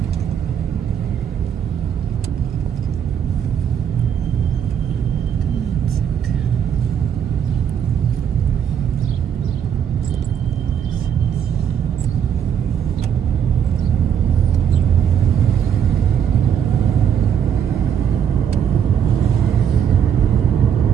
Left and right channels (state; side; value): quieter; left; 8.4 dB